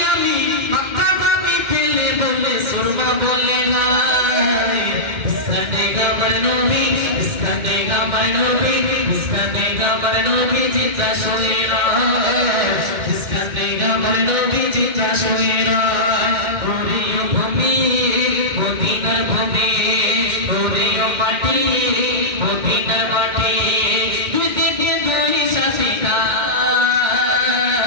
আমি মক্কা বাবি পেলে বলে সুরমা বলে গায় ইসকানে গামার নবী ইসকানে গামার নবী ইসকানে গামার নবী জিতা শোনেরা ইসকানে গামার নবী জিতা শোনেরা ওরিও ভূমি মদিনার ভূমি ওরিও মাটি মদিনার মাটি দুই দিকে দুই সাথে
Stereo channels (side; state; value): left; late; 2.1 ms